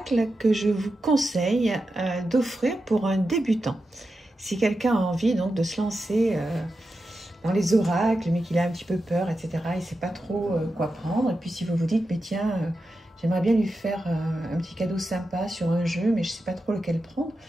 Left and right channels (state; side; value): normal; both; correlation 0.90